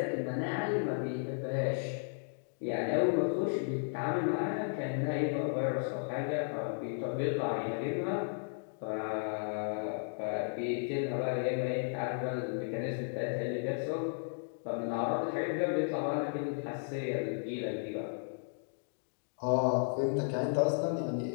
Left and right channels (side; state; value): right; silent; digital silence